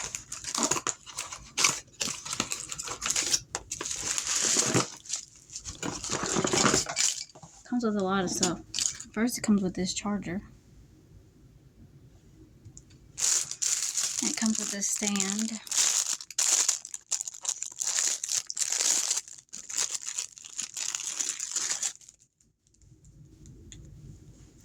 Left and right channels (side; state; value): both; identical; correlation 1.00